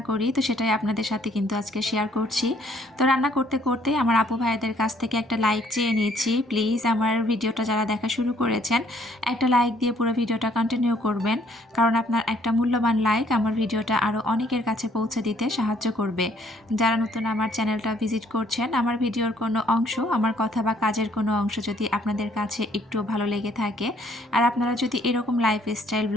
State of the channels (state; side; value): normal; both; correlation 0.64